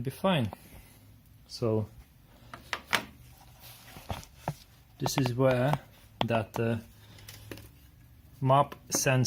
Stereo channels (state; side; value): identical; both; correlation 1.00